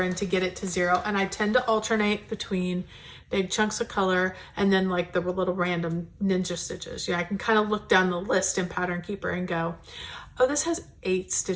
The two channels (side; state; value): both; identical; correlation 1.00